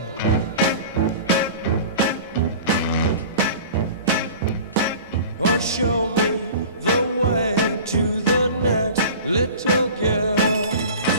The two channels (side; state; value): both; inverted; correlation -0.39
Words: Well, show me the way to the next little girl.